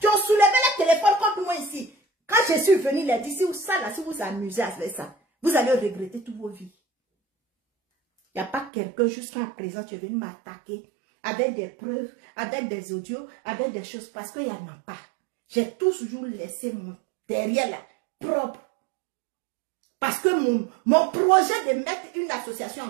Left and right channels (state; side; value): drops out; left; at 8.7 s